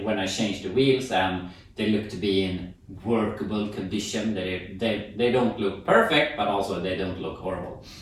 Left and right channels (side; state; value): both; identical; correlation 1.00